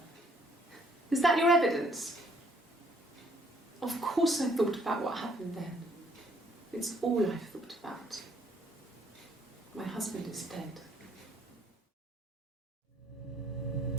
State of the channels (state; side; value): normal; both; correlation 0.65